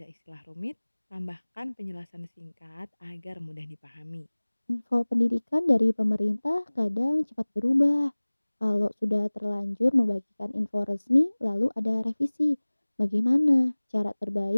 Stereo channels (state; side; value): inverted; both; correlation -1.00